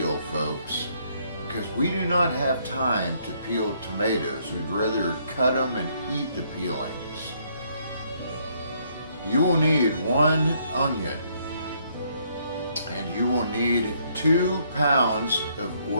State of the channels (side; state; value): both; inverted; correlation -0.69